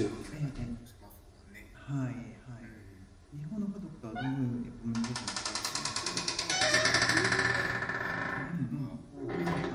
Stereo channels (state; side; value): identical; both; correlation 1.00